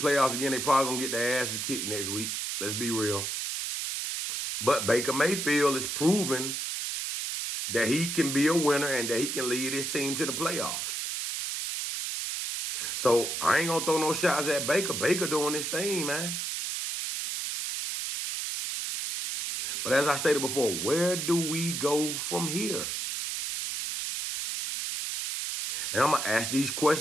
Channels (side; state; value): right; noise; hiss, 3 dB below the sound